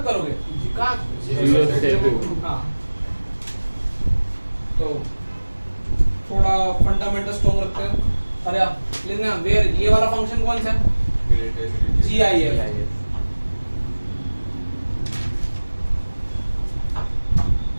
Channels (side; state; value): both; inverted; correlation -1.00